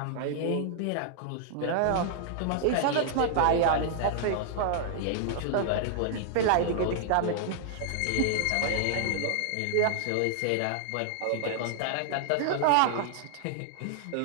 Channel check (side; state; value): both; different; correlation -0.01